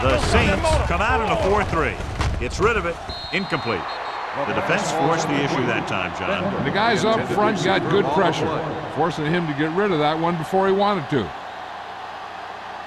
The Don't stop. Saints That motor. come out in a 4-3. Gets rid of it. Incomplete. The defense forced the issue that time, John. And the guys up front got good pressure, forcing him to get rid of that one before he wanted to.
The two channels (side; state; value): both; identical; correlation 1.00